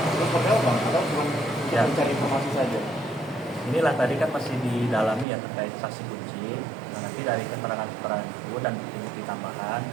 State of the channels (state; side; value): drops out; left; at 5.2 s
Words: seperti apa Bang? Atau cuma Ya. mencari informasi saja? Inilah tadi kan masih didalami ya terkait saksi kunci. Nah, nanti dari keterangan-keterangan itu dan bukti-bukti tambahan